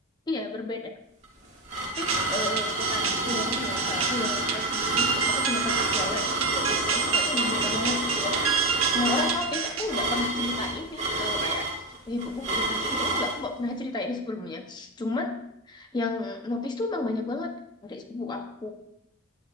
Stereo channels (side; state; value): both; normal; correlation 0.16